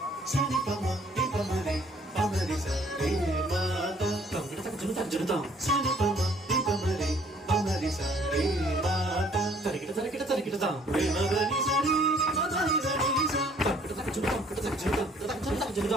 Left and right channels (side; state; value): both; normal; correlation 0.59